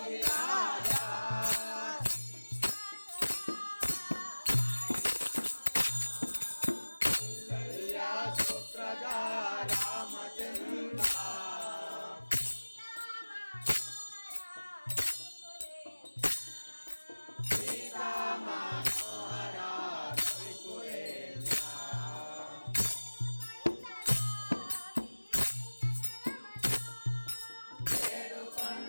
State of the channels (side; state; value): both; inverted; correlation -1.00